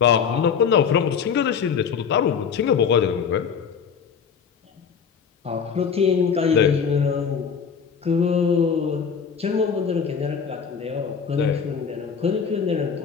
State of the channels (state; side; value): quieter; right; 6.6 dB